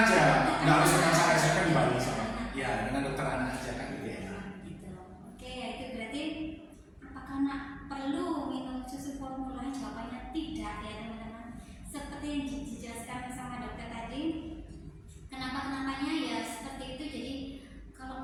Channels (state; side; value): identical; both; correlation 1.00